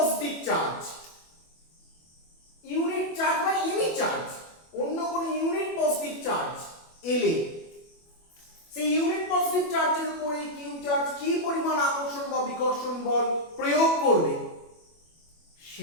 চার্জ বা এনি চার্জ, অন্য কোনো ইউনিট পজিটিভ চার্জ এলে সেই ইউনিট পজিটিভ চার্জের উপরে কিউ চার্জ কি পরিমাণ আকর্ষণ বা বিকর্ষণ বল প্রয়োগ করবে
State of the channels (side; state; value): right; late; 25 ms